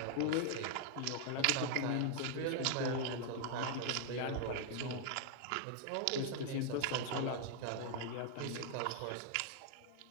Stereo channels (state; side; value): different; both; correlation 0.00